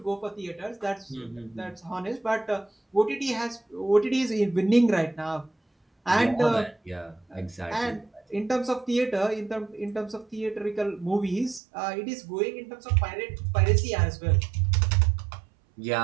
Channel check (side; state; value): left; drops out; at 11.6 s